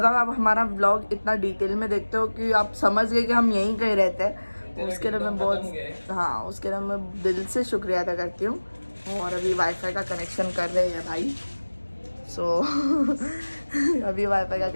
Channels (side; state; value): both; inverted; correlation -1.00